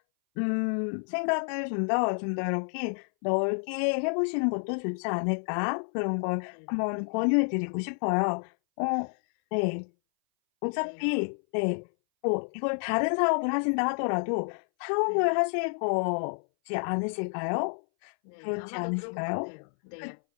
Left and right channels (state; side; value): silent; right; 59 dB below the other